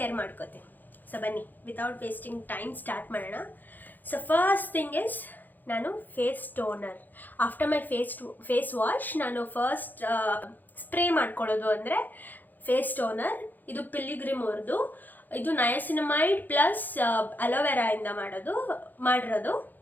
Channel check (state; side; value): late; right; 0.086 ms